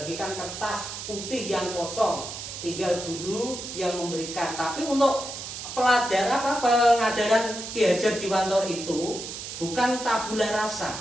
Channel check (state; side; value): noise; right; hiss, 8 dB below the sound